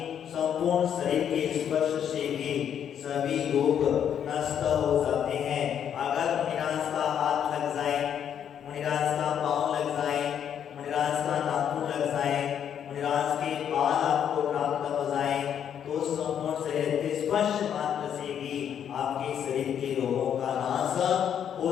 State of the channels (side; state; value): right; quieter; 8.9 dB